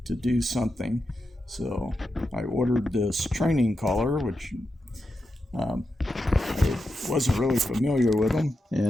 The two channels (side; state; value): both; normal; correlation 0.88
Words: do something. So I ordered this training collar, which I wasn't really familiar with them.